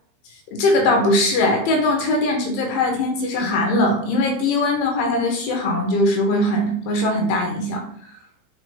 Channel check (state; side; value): late; right; 15 ms